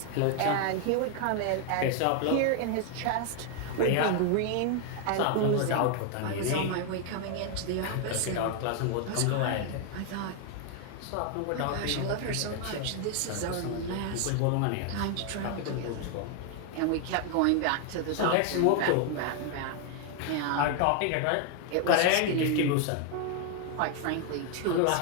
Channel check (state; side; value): different; both; correlation 0.00